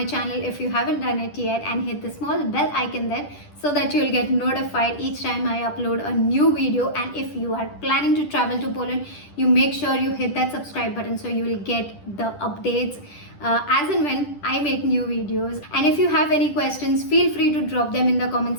channel if you haven't done it yet, and hit the small bell icon there so that you'll get notified each time I upload a new video. And if you are planning to travel to Poland, you make sure you hit that subscribe button so you will get the updates as and when I make new videos. And if you have any questions, feel free to drop them in the comment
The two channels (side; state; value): right; late; 10 ms